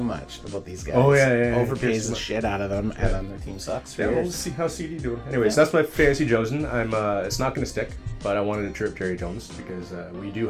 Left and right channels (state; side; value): identical; both; correlation 1.00